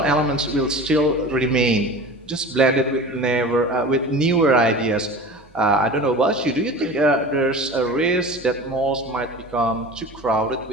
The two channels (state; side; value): normal; both; correlation 0.36